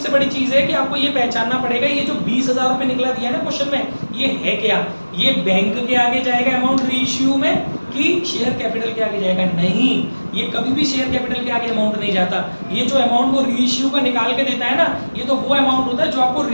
बड़ी चीज है कि आपको ये पहचानना पड़ेगा, ये जो 20,000 रुपए निकला दिया है ना क्वेश्चन में, ये है क्या? ये बैंक के आगे जाएगा अमाउंट रीइश्यू में कि शेयर कैपिटल के आगे जाएगा? नहीं, ये कभी भी शेयर कैपिटल के आगे अमाउंट नहीं जाता। ये जो अमाउंट वो रीइश्यू का निकाल के देता है ना, ये तो वो अमाउंट होता है जो आपको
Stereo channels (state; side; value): inverted; both; correlation -1.00